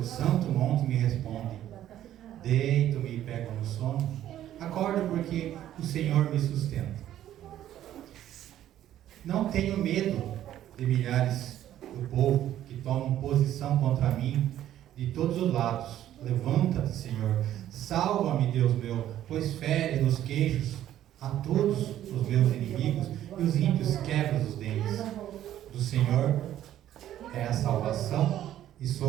santo monte, me responde. Deito-me e pego no sono, acordo porque o Senhor me sustenta. Não tenho medo de milhares do povo que tomam posição contra mim de todos os lados. Levanta-te, Senhor, salva-me, Deus meu, pois fere nos queixos a todos os meus inimigos e os ímpios quebra os dentes. Do Senhor é a salvação e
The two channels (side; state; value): left; quieter; 12.1 dB